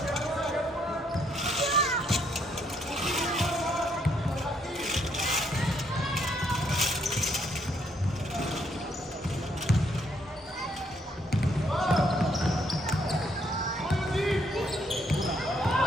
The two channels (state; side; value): normal; both; correlation 0.71